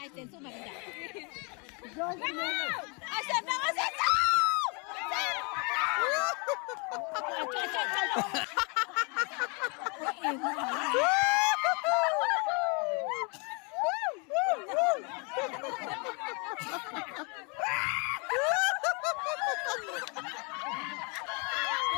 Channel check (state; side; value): quieter; right; 32.9 dB